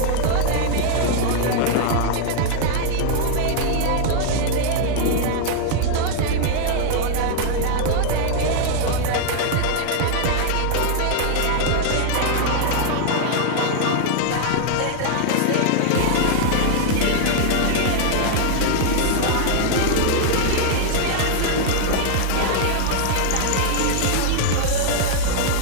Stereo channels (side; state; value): both; different; correlation 0.00